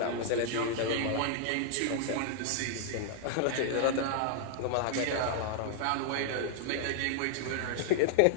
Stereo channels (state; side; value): different; both; correlation -0.01